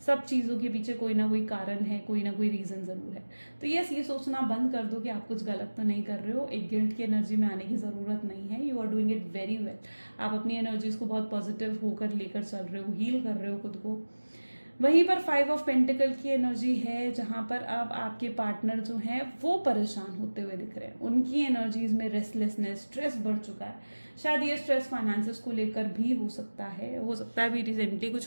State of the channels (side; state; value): both; inverted; correlation -1.00